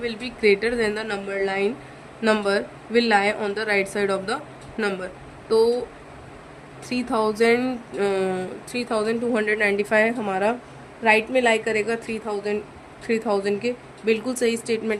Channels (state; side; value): identical; both; correlation 1.00